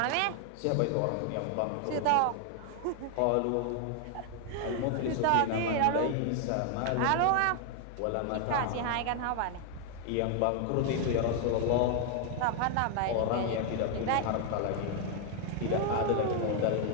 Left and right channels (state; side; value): different; both; correlation 0.00